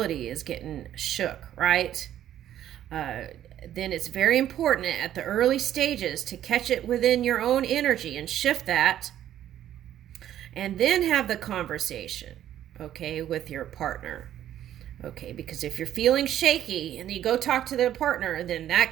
is getting shook, right? Then it's very important at the early stages to catch it within your own energy and shift that. And then have the conversation, okay, with your partner. Okay, because if you're feeling shaky and you go talk to the partner, then that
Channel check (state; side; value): quieter; left; 11.6 dB